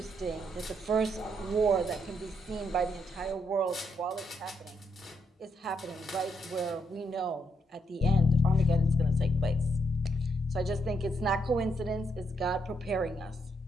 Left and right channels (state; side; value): normal; both; correlation 0.77